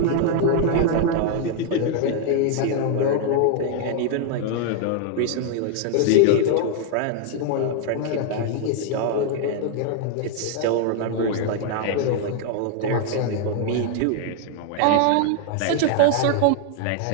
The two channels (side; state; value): both; different; correlation 0.00